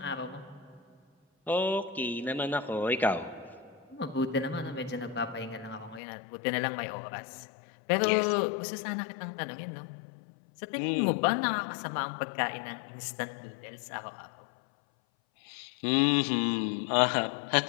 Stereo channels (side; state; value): right; drops out; at 6.0 s